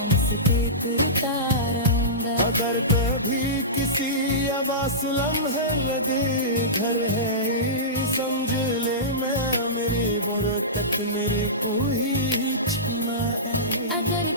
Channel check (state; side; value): normal; both; correlation -0.19